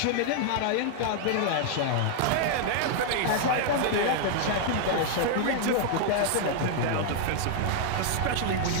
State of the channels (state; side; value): different; both; correlation 0.00